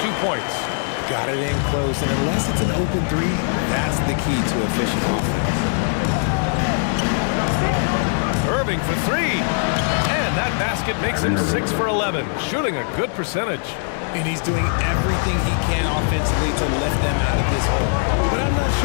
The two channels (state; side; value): silent; right; 60 dB below the other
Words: 2 points. Got it in close, and unless it's an open 3, that's the key to efficient offense. Irving for 3. And that basket makes him 6 for 11, shooting a good percentage. And he's doing everything he can offensively to lift them out of this hole. But I'm not